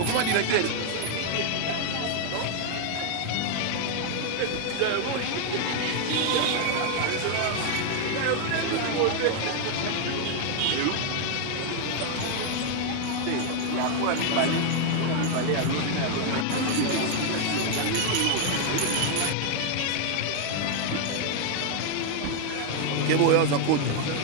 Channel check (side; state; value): both; different; correlation 0.00